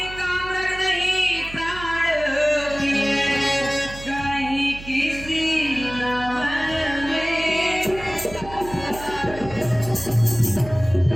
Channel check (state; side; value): noise; right; hum, 14 dB below the sound